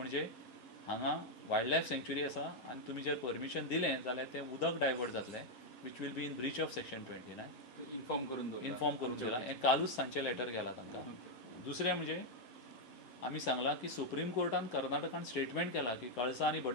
हांगा वायल्ड लायफ सँक्च्युरी आसा आनी तुमी जर परमिशन दिलें जाल्यार तें उदक डायवर्ट जातलें which will be in breach of section 29. Inform करून दिला. हें कालूच सांजचें लेटर गेलां तांकां. दुसरें म्हणजे आमी सांगलां की सुप्रीम कोर्टान कर्नाटकान स्टेटमेंट केला की कळसा आनी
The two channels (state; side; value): late; right; 11 ms